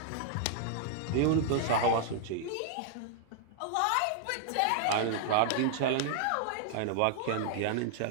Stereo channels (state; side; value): different; both; correlation -0.01